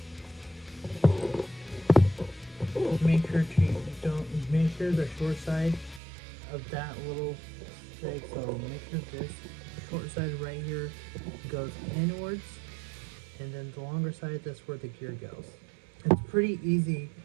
Make sure the short side of that little thing, so make sure this short side right here goes inwards, and then the longer side, that's where the gear goes. It's pretty easy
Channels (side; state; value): left; drops out; at 6.0 s